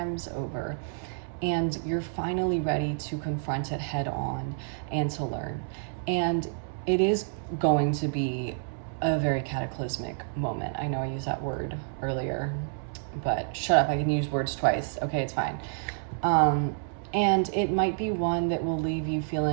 over, and you're finally ready to confront it head on and to learn. And it is going to be a very cataclysmic moment. I know I used that word earlier, but shut up, I can use words twice. Okay, it's fine. And it might be one that will leave you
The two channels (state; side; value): silent; left; 57 dB below the other